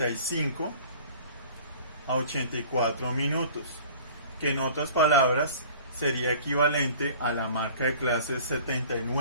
a 84 minutos, que en otras palabras sería equivalente a la marca de clase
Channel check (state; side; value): inverted; both; correlation -0.46